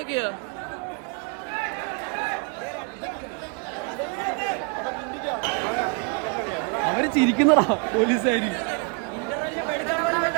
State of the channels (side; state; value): left; quieter; 36.2 dB